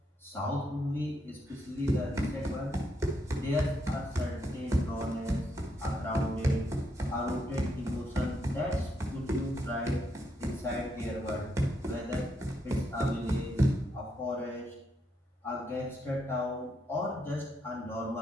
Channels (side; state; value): both; normal; correlation 0.79